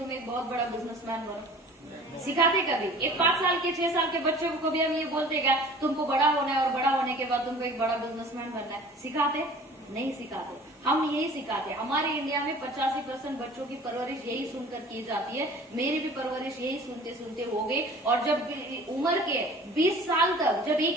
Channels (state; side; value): normal; both; correlation 0.46